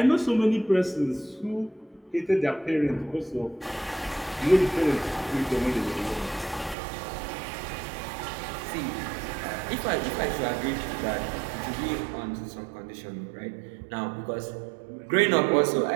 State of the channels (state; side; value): drops out; left; at 6.8 s